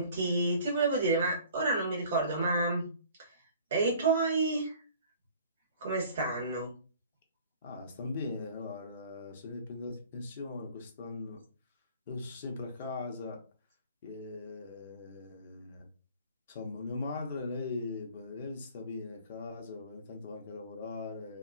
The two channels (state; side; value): inverted; both; correlation -0.49